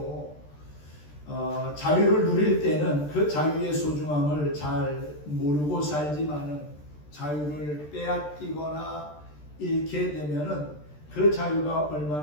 자유를 누릴 때는 그 자유의 소중함을 잘 모르고 살지만은 자유를 빼앗기거나 잃게 되면은 그 자유가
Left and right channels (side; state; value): right; late; 14 ms